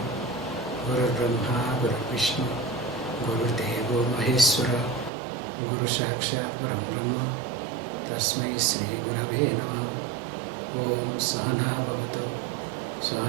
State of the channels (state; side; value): drops out; left; at 5.1 s